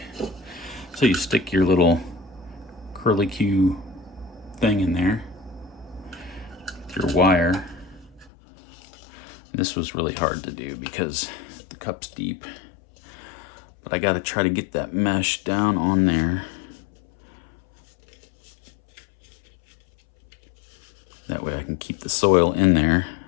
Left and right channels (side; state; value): right; drops out; at 8.3 s